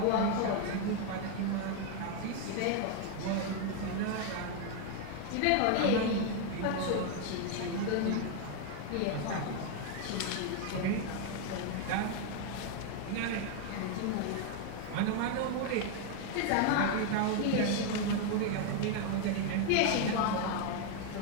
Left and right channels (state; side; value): different; both; correlation 0.01